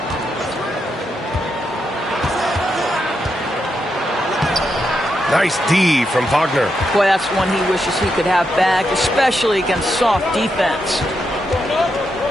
Nice D from Wagner. Boy, that's one he wishes he could have back, especially against soft defense.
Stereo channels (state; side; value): normal; both; correlation 0.83